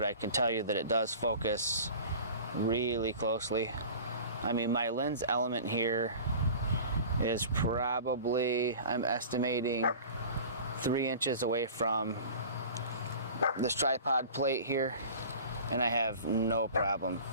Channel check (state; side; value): inverted; both; correlation -0.40